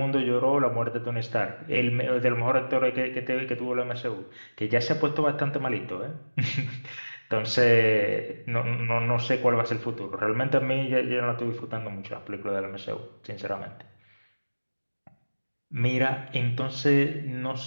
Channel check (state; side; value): inverted; both; correlation -1.00